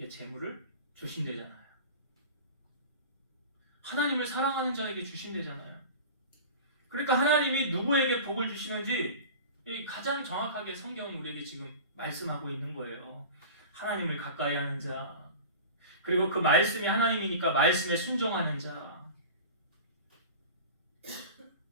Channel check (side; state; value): both; inverted; correlation -0.35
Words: 재물을 주신대잖아요. 하나님을 사랑하는 자에게 주신대잖아요. 그러니까 하나님이 누구에게 복을 주시는지 가장 정확하게 성경은 우리에게 지금 말씀하고 있는 거예요. 하나님을 가까이 하는 자, 그리고 그 말씀이 하나님이니까 말씀에 순종하는 자,